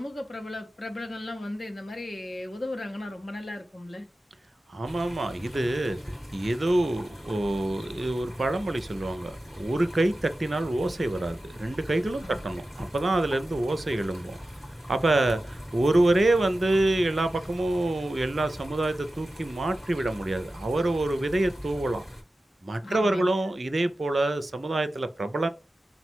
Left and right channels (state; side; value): normal; both; correlation 0.94